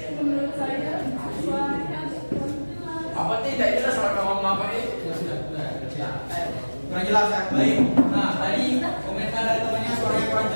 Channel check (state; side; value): inverted; both; correlation -1.00